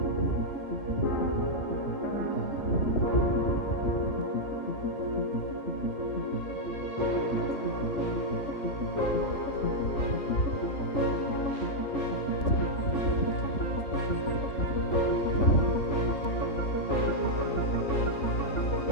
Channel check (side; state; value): right; late; 3.4 ms